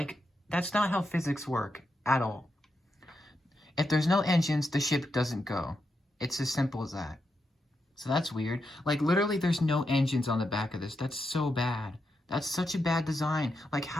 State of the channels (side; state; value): both; normal; correlation 0.85